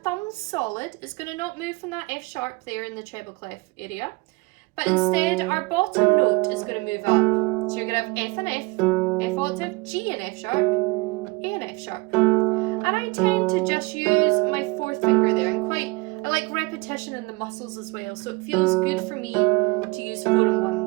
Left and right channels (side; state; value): left; quieter; 24.2 dB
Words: solid. It's gonna not move from that F sharp there in the treble clef area. But instead, our bottom note is gonna move up. So you're gonna have F and F octave, G and F sharp, A and F sharp. And I tend to just use my fourth finger there, and I like repetition in the muscles as well, so it feels good for me to use 4 and 1